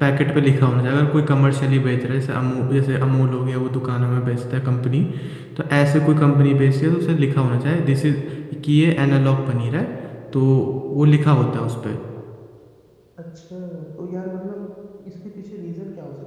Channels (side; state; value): both; identical; correlation 1.00